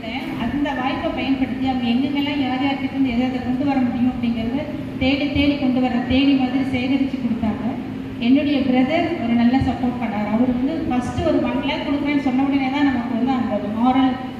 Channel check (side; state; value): both; identical; correlation 1.00